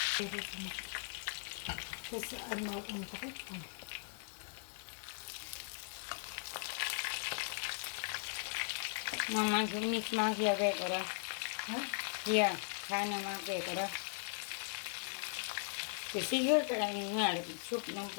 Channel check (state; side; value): silent; right; digital silence